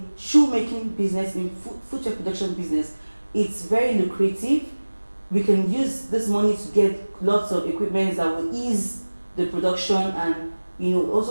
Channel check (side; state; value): both; inverted; correlation -1.00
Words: shoemaking business, in footwear production business. It's very lucrative. We can use this money to get lots of equipment that will ease the production and